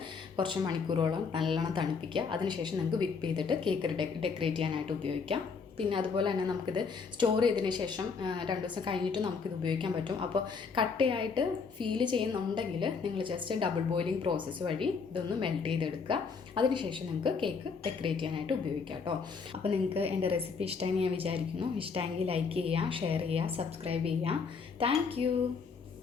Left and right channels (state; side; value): quieter; right; 5.3 dB